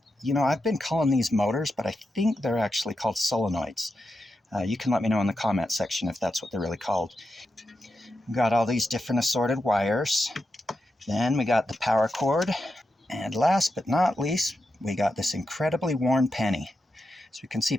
been calling these motors, but I think they're actually called solenoids. You can let me know in the comment section if that's what they're really called. Got all these different assorted wires. Then we got the power cord. And last but not least, we got this incredibly worn penny. So you can see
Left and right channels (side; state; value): both; normal; correlation 0.87